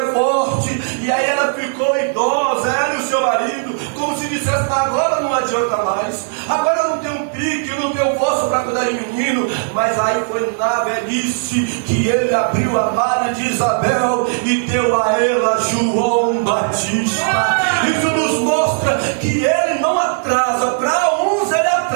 forte. E aí ela ficou idosa, ela e o seu marido, como se dissesse: agora não adianta mais, agora eu não tenho pique, eu não tenho força para cuidar de menino. Mas aí foi na velhice que ele abriu a madre de Isabel e deu a ela João Batista. Isso nos mostra que ele não atrasa. Para uns ele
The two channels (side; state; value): left; silent; digital silence